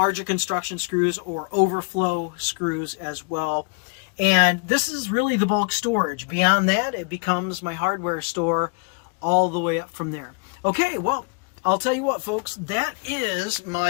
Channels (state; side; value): quieter; right; 34.5 dB